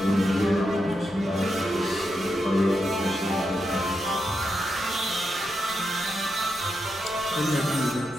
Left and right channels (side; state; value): right; noise; rumble, 26 dB below the sound